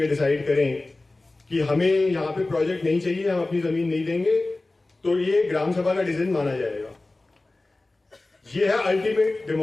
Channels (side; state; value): right; quieter; 3.0 dB